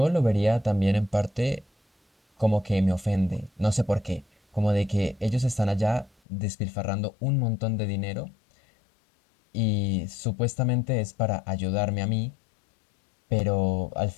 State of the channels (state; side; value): drops out; right; at 6.1 s